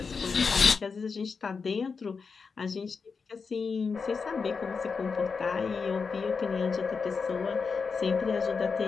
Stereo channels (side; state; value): right; quieter; 5.2 dB